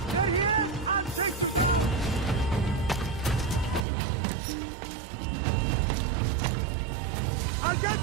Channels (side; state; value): left; drops out; at 3.9 s